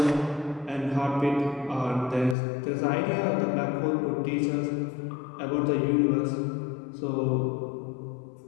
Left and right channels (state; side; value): drops out; right; at 2.4 s